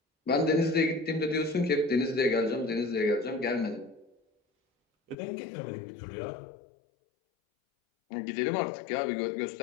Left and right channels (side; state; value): right; drops out; at 5.2 s